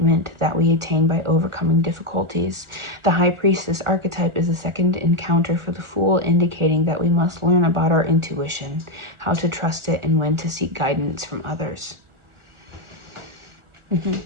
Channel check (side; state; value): left; late; 1.4 ms